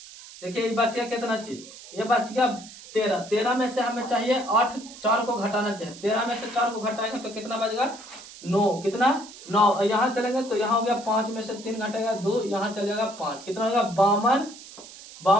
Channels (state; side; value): noise; right; hiss, 17 dB below the sound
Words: देखिए ये बच गया कितना चीज, ये बच गया 13। 13 में से हमें चाहिए 8, 4 को घटाना चाहिए। 13 में से 4 को घटाएंगे तो कितना बचेगा 9। कितना 9। यहाँ चलेंगे तो यहाँ हो गया 5 में से 3 घटेगा 2, यहाँ चलेगा 5। कितना होगा